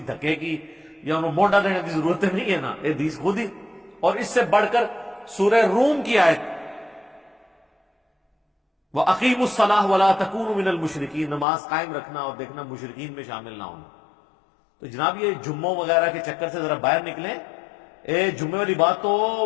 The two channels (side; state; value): right; drops out; at 11.5 s